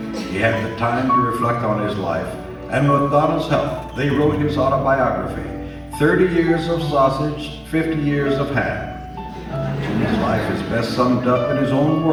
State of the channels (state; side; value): identical; both; correlation 1.00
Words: He had the time to reflect on his life, and with Donna's help, they wrote his autobiography, 30 Years of Sausage, 50 Years of Ham. Jimmy's life is best summed up in his own